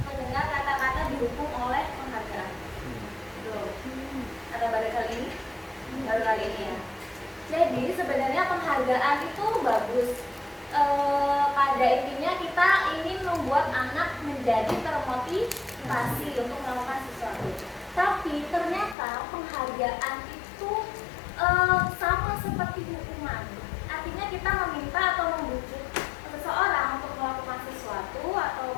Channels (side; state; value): right; drops out; at 18.9 s